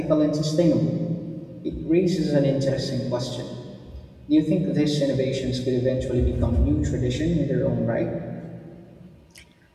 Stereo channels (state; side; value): identical; both; correlation 1.00